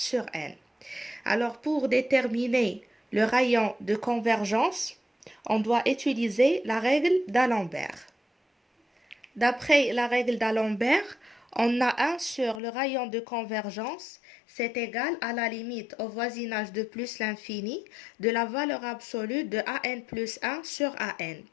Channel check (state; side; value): drops out; right; at 12.6 s